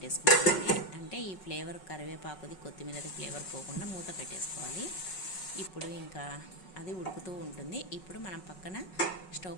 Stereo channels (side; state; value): right; late; 5.4 ms